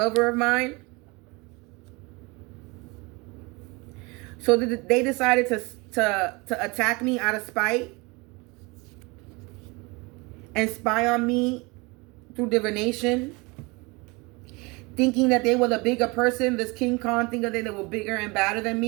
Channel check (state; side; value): quieter; left; 26.4 dB